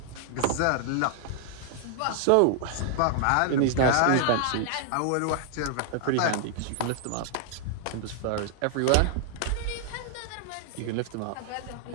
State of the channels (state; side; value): different; both; correlation 0.00